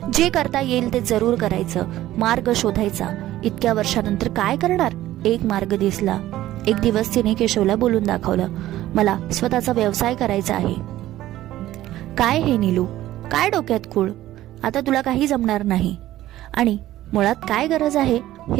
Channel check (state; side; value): quieter; left; 14.5 dB